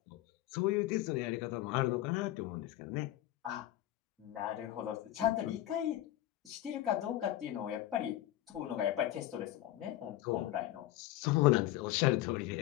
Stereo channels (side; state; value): right; quieter; 14.2 dB